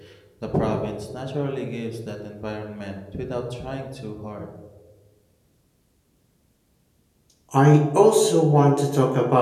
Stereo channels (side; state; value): both; identical; correlation 1.00